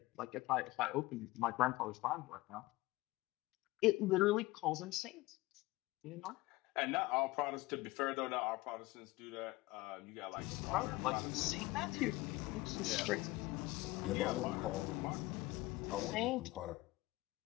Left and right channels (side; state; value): right; quieter; 19.8 dB